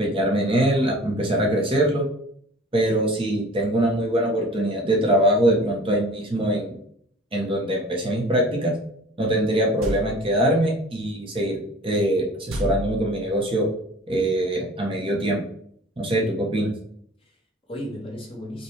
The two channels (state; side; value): normal; both; correlation 0.44